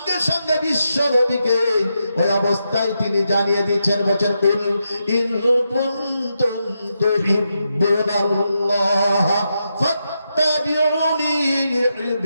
সঙ্গে বিশ্ব নবীকে ওই অবস্থায় তিনি জানিয়ে দিচ্ছেন, বলেন কুল ইন কুনতুম তুহিব্বুনাল্লাহ ফাত্তাবিউনি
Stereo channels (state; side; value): inverted; both; correlation -0.85